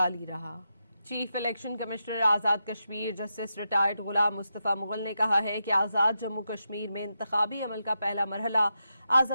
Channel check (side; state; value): both; inverted; correlation -0.87